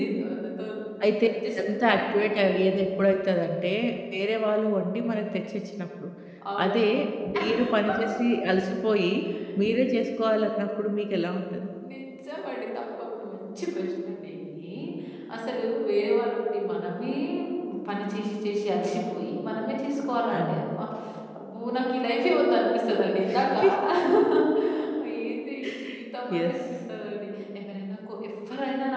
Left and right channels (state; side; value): identical; both; correlation 1.00